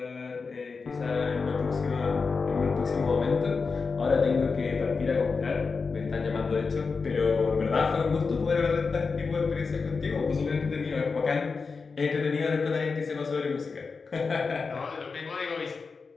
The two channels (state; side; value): quieter; right; 4.7 dB